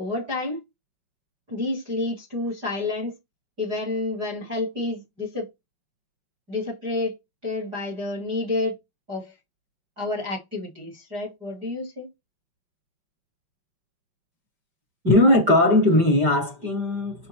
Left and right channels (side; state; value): left; late; 5.1 ms